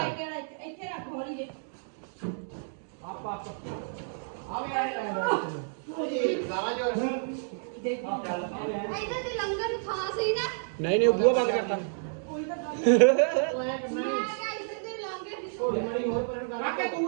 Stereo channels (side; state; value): left; silent; digital silence